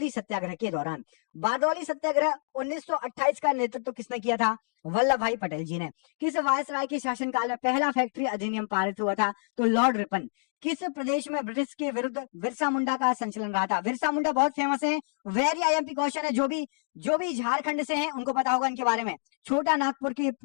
सत्याग्रह के दौरान। बारदौली सत्याग्रह 1928 का नेतृत्व किसने किया था? वल्लभ भाई पटेल जी ने। किस वायसराय के शासनकाल में पहला फैक्ट्री अधिनियम पारित हुआ था? तो लॉर्ड रिपन। किस प्रदेश में ब्रिटिश के विरुद्ध बिरसा मुंडा का संचलन रहा था? बिरसा मुंडा बहुत फेमस है, वेरी IMP क्वेश्चन है। जो भी झारखंड से हैं उनको पता होगा इनके बारे में। छोटा नागपुर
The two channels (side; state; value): right; silent; digital silence